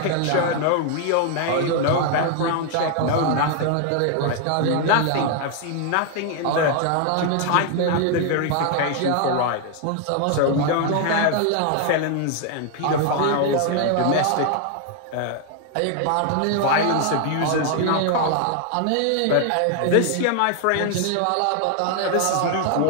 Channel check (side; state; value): both; different; correlation 0.00